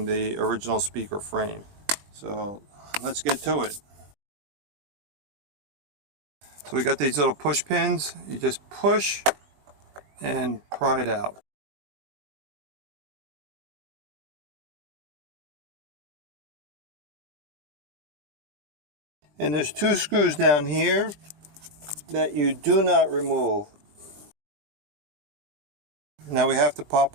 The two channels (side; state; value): left; late; 20 ms